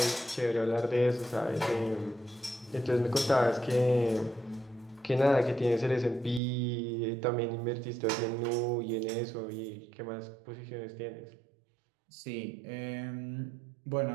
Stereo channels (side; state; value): left; drops out; at 6.4 s